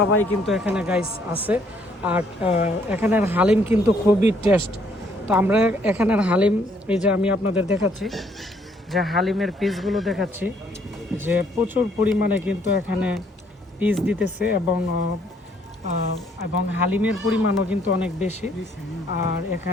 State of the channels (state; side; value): normal; both; correlation 0.67